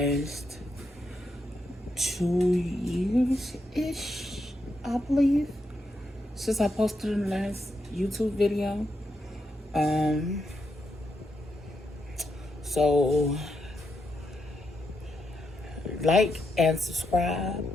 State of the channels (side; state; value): both; normal; correlation 0.83